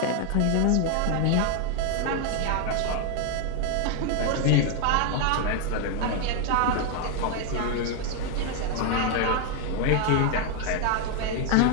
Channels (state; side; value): different; both; correlation 0.00